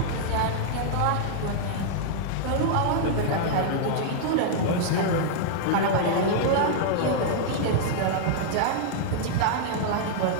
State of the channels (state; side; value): different; both; correlation -0.01